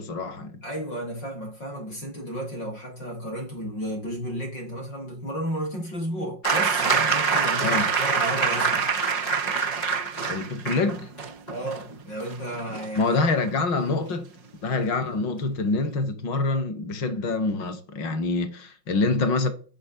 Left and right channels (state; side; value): late; right; 5.5 ms